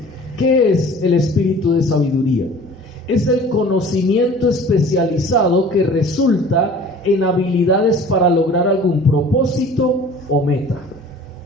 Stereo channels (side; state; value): both; normal; correlation 0.46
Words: ¿qué es el espíritu de sabiduría? Es el conocimiento especializado que resulta en habilidades para lograr algún propósito o meta.